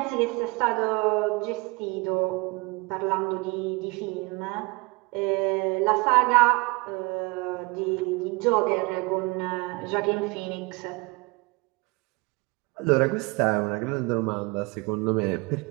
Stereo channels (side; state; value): left; quieter; 26.9 dB